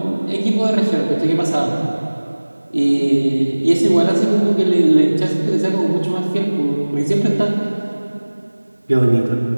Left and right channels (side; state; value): both; inverted; correlation -1.00